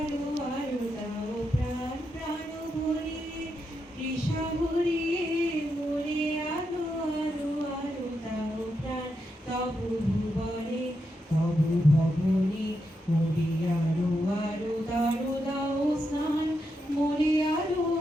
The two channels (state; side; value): normal; both; correlation 0.84